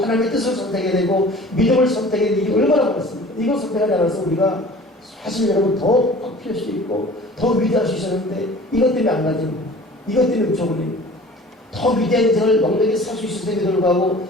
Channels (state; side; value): normal; both; correlation 0.45